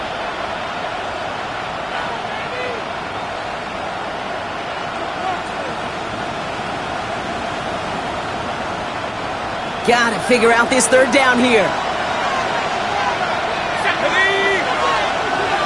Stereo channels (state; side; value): identical; both; correlation 1.00